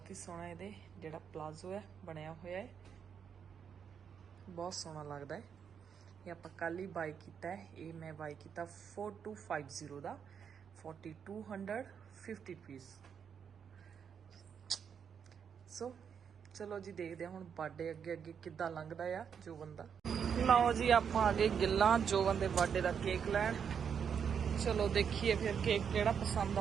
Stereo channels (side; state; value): left; quieter; 7.3 dB